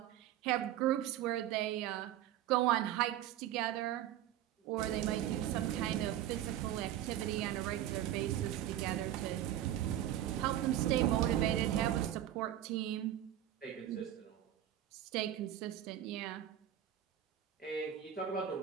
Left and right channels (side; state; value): left; quieter; 12.0 dB